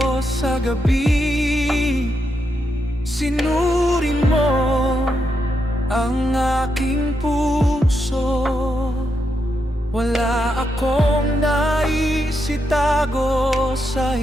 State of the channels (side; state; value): both; normal; correlation 0.83